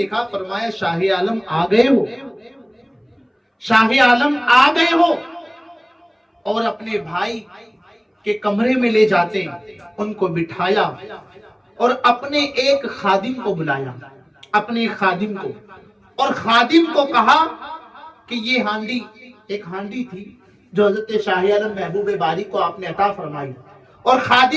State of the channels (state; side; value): identical; both; correlation 1.00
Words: فرمایا شاہ عالم آ گئے ہو، شاہ عالم آ گئے ہو، اور اپنے بھائی کے کمرے میں لے جاتے ہیں، ان کو بٹھایا اور اپنے ایک خادم کو بلایا، اپنے خادم کو، اور خادم کو کہا کہ یہ ہانڈی، ایک ہانڈی تھی جو حضرت شاہ عالم محبوب باری کو آپ نے عطا فرمائی، اور